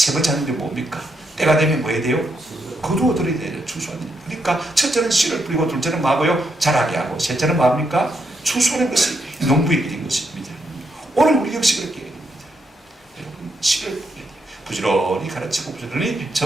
번째 하는 일이 뭡니까? 때가 되면 뭐 해야 돼요? 거두어들어야 돼요. 추수하는 일. 그러니까 첫째는 씨를 뿌리고, 둘째는 뭐하고요? 자라게 하고, 셋째는 뭐합니까? 추수하는 것이 농부의 일인 것입니다. 오늘 우리 역시 그렇게 해야 됩니다. 여러분, 씨를 뿌려야 돼요. 부지런히 가르치고 부지런히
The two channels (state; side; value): normal; both; correlation 0.79